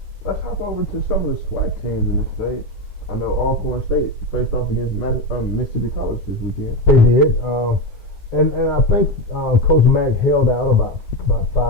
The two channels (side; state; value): right; late; 9.6 ms